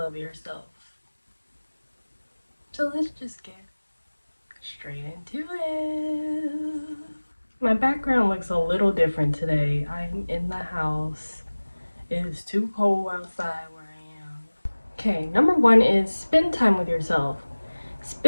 yourself. So let's just get straight into it. My background looks a little different today. I'm in the house. It is too cold outside where I am. Okay, number one is spend time with yourself.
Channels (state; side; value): inverted; both; correlation -1.00